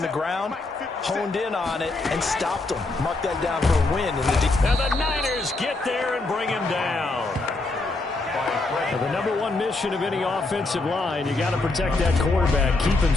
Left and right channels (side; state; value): right; quieter; 3.2 dB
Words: the ground, honed in on it, and stopped them. Mark that down for a win. And the Niners get there and bring him down. Well, the number one mission of any offensive line, you got to protect that quarterback, keep him